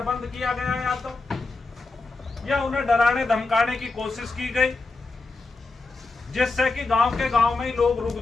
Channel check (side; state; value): right; quieter; 3.7 dB